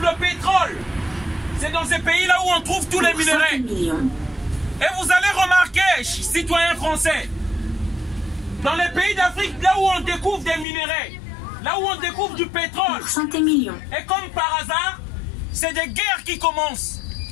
le pétrole, c'est dans ces pays-là où on trouve tous les minerais. Et vous allez remarquer, citoyens français, dans les pays d'Afrique, là où on découvre des minerais, là où on découvre du pétrole, et comme par hasard, c'est des guerres qui commencent.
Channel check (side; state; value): right; drops out; at 10.7 s